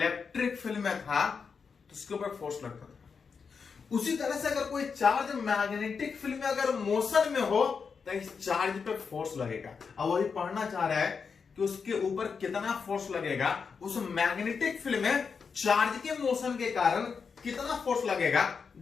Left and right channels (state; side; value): quieter; right; 5.7 dB